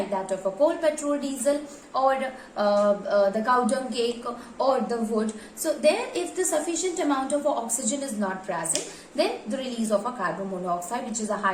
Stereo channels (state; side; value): identical; both; correlation 1.00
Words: that of a coal, petrol, diesel, or the cow dung cake, or the wood. So there, if the sufficient amount of oxygen is not present, then the release of a carbon monoxide, which is a